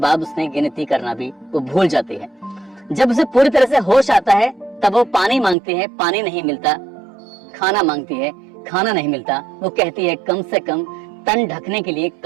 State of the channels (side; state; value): left; drops out; at 5.6 s